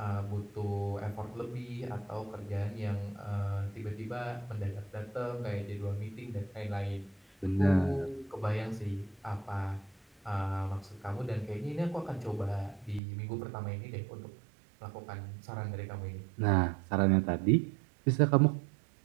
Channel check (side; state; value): left; drops out; at 13.0 s